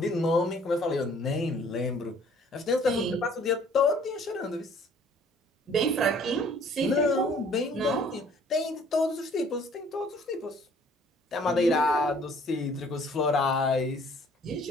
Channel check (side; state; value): both; normal; correlation 0.57